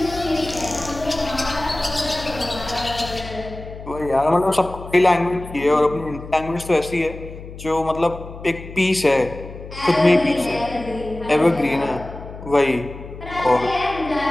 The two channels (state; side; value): noise; left; hum, 13 dB below the sound